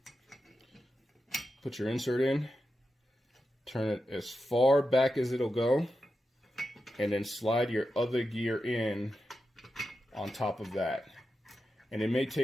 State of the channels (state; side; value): normal; both; correlation 0.90